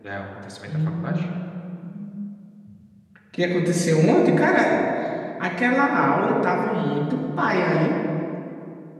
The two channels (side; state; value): both; identical; correlation 1.00